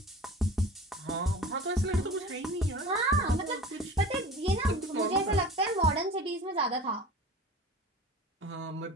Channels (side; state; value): both; normal; correlation 0.38